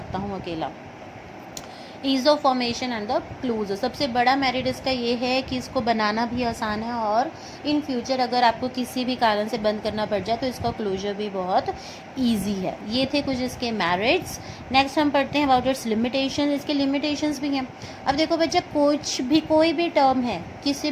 हूँ अकेला। Ease of formation and the closure. सबसे बड़ा मेरिट इसका ये है कि इसको बनाना भी आसान है और इन फ्यूचर अगर आपको किसी भी कारण से बंद करना पड़ जाए तो इसका क्लोजर भी बहुत ईजी है। ये थे कुछ इसके मेरिट्स। नेक्स्ट हम पढ़ते हैं अबाउट इट्स लिमिटेशन। इसके लिमिटेशंस भी हैं। अब देखो बच्चा, कोई भी टर्म है किसी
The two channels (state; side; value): identical; both; correlation 1.00